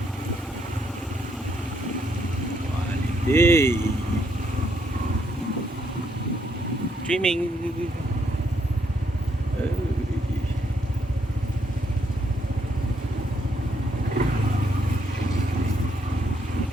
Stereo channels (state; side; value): normal; both; correlation 0.74